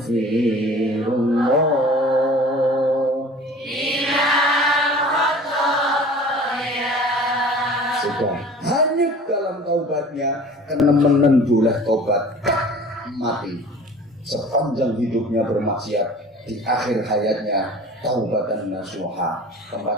Sudah hanyut dalam taubatnya, kenemenen boleh taubat mati. Sepanjang hidupnya bermaksiat, di akhir hayatnya taubatan nasuha.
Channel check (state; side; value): normal; both; correlation 0.44